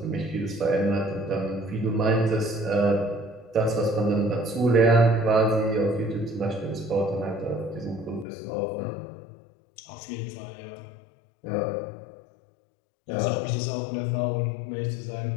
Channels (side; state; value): right; drops out; at 8.2 s